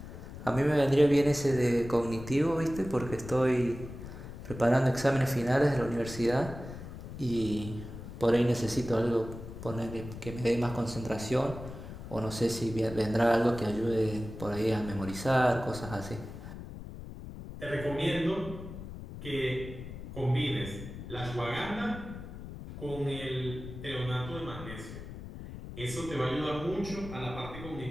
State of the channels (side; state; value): left; noise; rumble, 11 dB below the sound